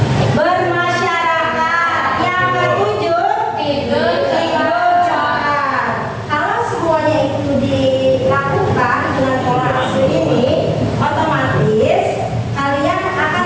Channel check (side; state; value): both; identical; correlation 1.00